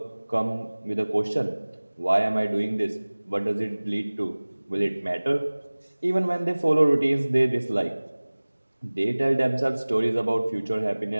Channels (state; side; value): inverted; both; correlation -1.00